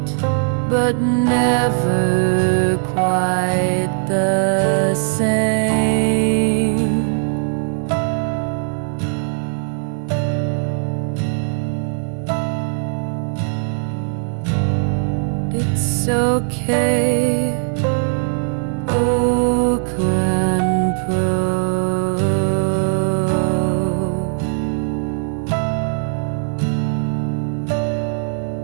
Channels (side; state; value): left; silent; digital silence